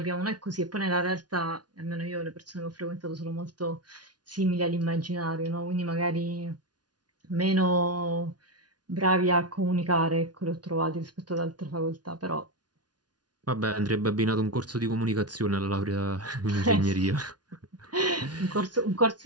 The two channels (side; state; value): left; late; 0.69 ms